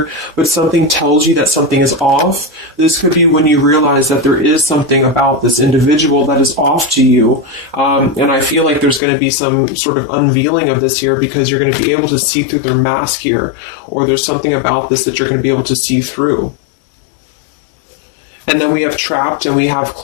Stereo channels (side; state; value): right; drops out; at 9.0 s